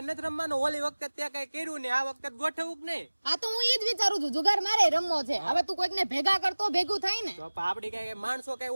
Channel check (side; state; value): both; inverted; correlation -1.00